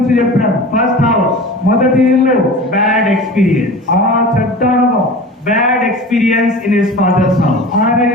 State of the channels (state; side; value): normal; both; correlation 0.36